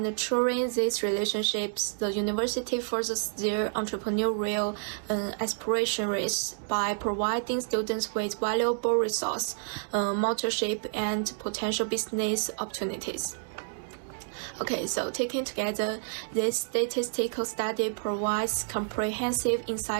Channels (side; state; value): left; silent; digital silence